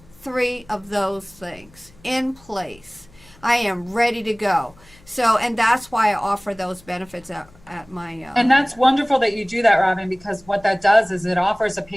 3 of those things in place. I am ready to go. So, and that's why I offer those benefits at my... And that's wonderful that you do that, Robin, because what that does is it offers a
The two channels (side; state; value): left; noise; hum, 26 dB below the sound